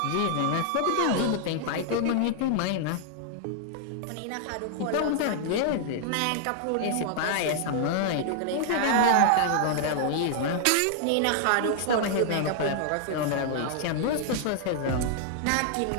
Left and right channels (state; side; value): different; both; correlation -0.01